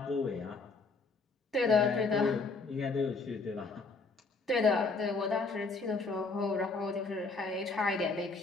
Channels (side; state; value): right; quieter; 4.0 dB